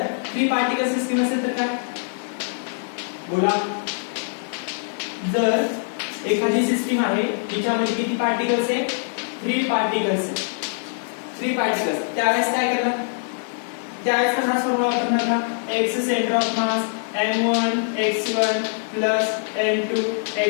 3 पार्टिकल सिस्टीम असेल तर काय? बोला. जर एखादी सिस्टीम आहे जिच्यामध्ये किती पार्टिकल्स आहे? 3 पार्टिकल्स. त्यावेळेस काय करणार? त्यावेळेस हा फॉर्म्युला वापरणार का? x centre of mass m1 x1 plus m2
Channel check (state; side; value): silent; right; digital silence